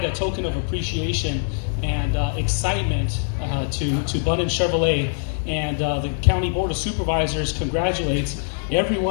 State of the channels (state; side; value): silent; right; digital silence